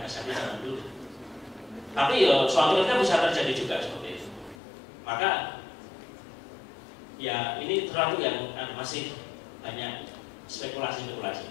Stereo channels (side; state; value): right; drops out; at 4.5 s